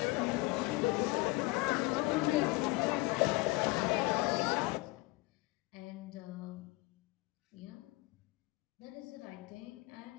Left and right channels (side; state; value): right; quieter; 23.3 dB